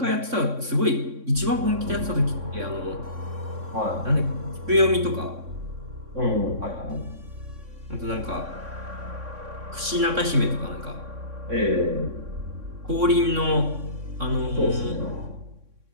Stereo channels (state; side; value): late; left; 3.6 ms